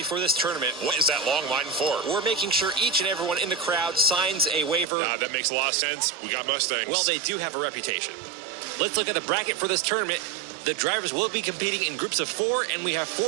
for this tournament. What is that long line for? We're making sure each and everyone in the crowd signs a waiver. That makes a lot of sense. We got Mustangs. Well, they do have a reputation. Let's look at the bracket for this tournament. The drivers will be competing in groups of 4, and we have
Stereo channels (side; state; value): left; drops out; at 4.9 s